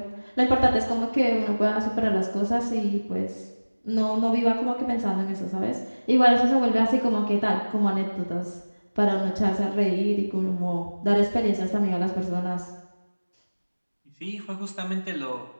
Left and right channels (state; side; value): inverted; both; correlation -1.00